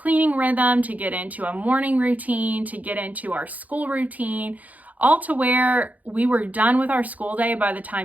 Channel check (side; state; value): left; late; 0.077 ms